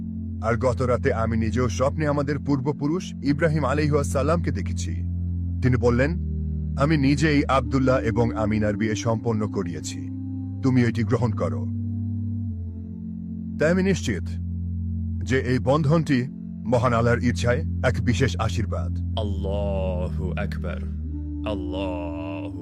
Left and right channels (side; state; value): both; identical; correlation 1.00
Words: আর গত রাতে আমি নিজেও স্বপ্নে আমাদের পূর্বপুরুষ ইব্রাহিম আলাইহিসসালামকে দেখেছি। তিনি বললেন, আমি নিজেই আব্দুল্লাহ এবং আমিনার বিয়ে সম্পন্ন করিয়েছি, তুমি এটি গ্রহণ করো। তাই আমি নিশ্চিত যে এই বন্ধনটি মহান আল্লাহর ইচ্ছায় এক বিশেষ আশীর্বাদ। আল্লাহু আকবার, আল্লাহু